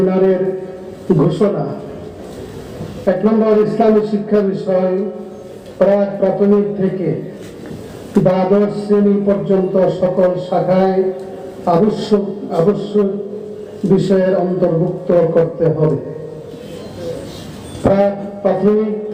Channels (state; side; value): identical; both; correlation 1.00